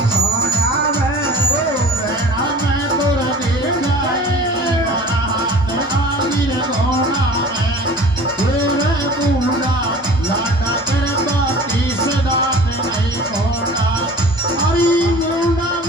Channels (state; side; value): normal; both; correlation 0.43